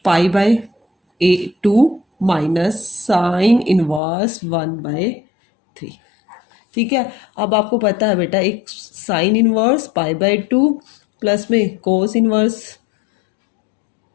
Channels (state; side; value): drops out; right; at 4.0 s